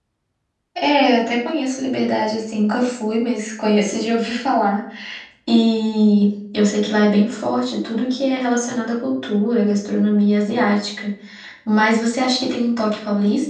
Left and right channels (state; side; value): identical; both; correlation 1.00